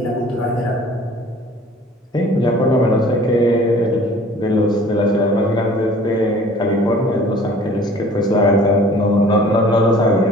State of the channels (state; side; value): normal; both; correlation 0.49